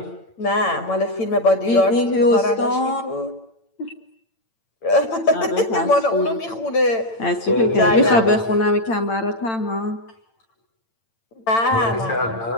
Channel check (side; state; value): right; late; 8.9 ms